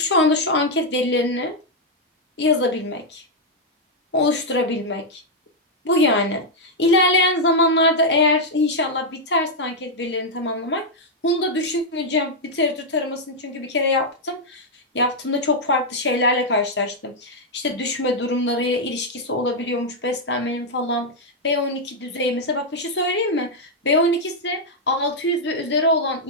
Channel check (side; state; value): both; normal; correlation -0.02